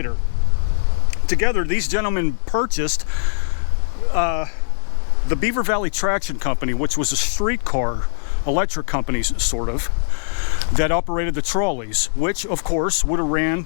Together, these gentlemen purchased the Beaver Valley Traction Company, which was a streetcar electric company, sort of, that operated the trolleys, which, of course, would have ran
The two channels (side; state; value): right; silent; digital silence